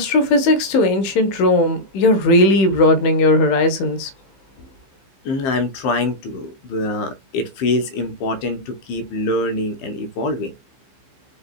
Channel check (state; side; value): late; right; 15 ms